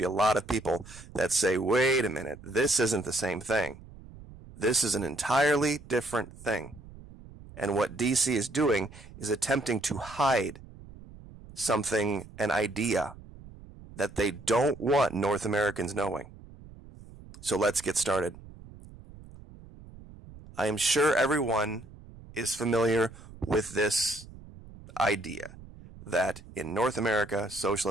a lot of people that say, wait a minute, this isn't the same thing. This is an entirely different thing. And what DC is doing is attempting to hide something, an idea, that they don't want North Americans knowing. So let's get started. I am sure everyone is familiar with this idea that in North America,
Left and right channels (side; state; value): right; noise; rumble, 18 dB below the sound